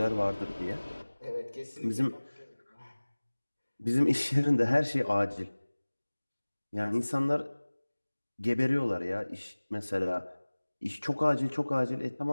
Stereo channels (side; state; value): both; inverted; correlation -1.00